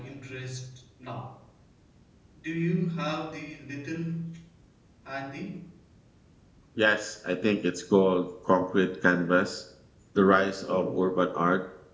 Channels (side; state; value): both; identical; correlation 1.00